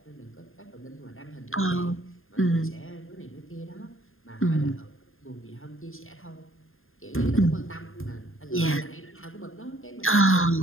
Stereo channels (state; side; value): late; right; 0.60 ms